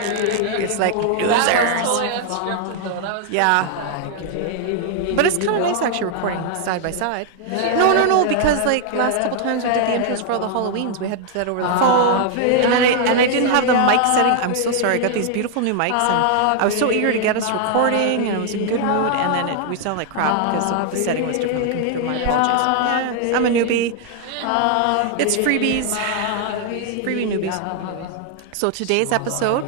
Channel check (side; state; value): both; different; correlation 0.00